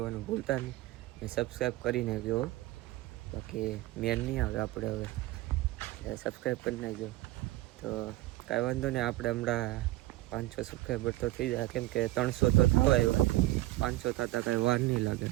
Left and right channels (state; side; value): quieter; left; 17.6 dB